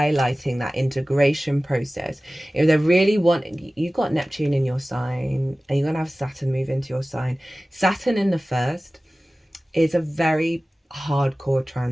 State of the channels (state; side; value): normal; both; correlation 0.97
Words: that integration process. If they really you've got Neptune in your sign, and you're going to have Saturn move into your sign. Saturn in the first is a very hardcore